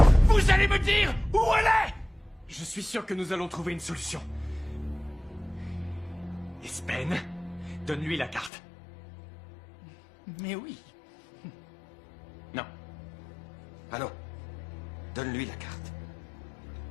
Vous allez me dire où elle est? Je suis sûr que nous allons trouver une solution. Espen, donne-lui la carte. Mais oui. Non. Ah non. Donne-lui la carte.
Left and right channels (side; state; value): right; drops out; at 8.5 s